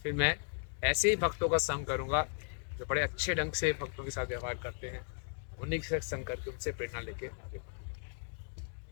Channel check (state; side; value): silent; right; 54 dB below the other